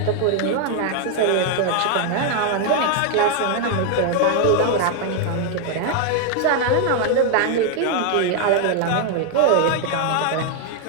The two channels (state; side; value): different; both; correlation 0.01